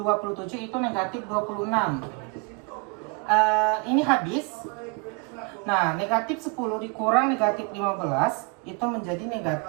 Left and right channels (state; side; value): quieter; left; 31.8 dB